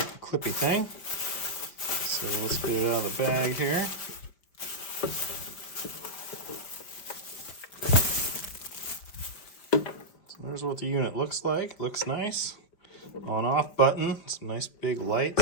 clippy thing. So let's get it out of the bag here. So there's what the unit looks like. Looks nice. On-off button. Some nice big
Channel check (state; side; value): late; right; 5.1 ms